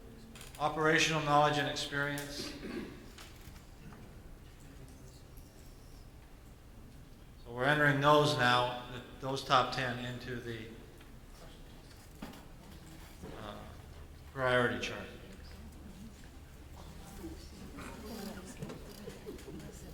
Operational knowledge and experience. So we're entering those now, those top 10 into the priority chart.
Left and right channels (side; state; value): both; identical; correlation 1.00